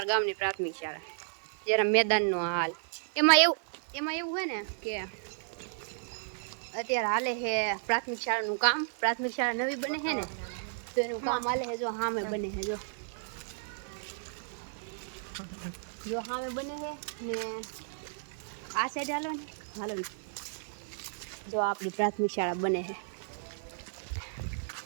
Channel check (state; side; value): silent; left; digital silence